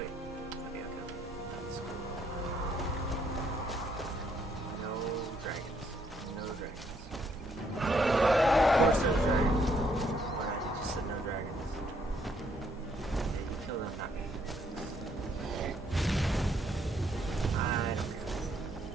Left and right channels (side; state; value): both; normal; correlation 0.70